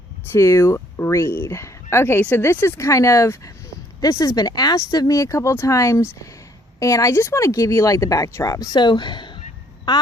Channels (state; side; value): normal; both; correlation 0.64